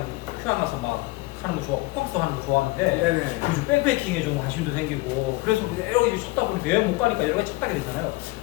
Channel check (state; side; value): quieter; right; 21.8 dB